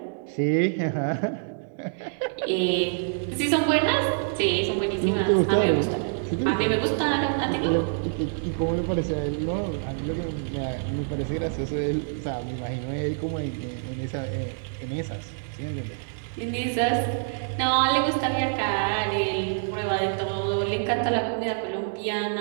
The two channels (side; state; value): left; silent; digital silence